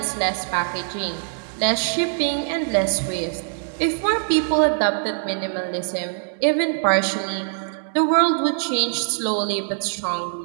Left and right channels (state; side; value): silent; left; 64 dB below the other